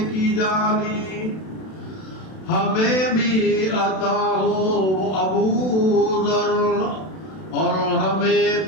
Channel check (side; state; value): right; late; 32 ms